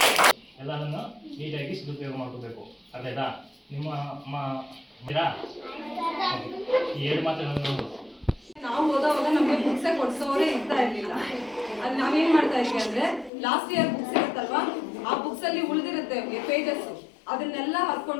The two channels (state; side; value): drops out; right; at 13.3 s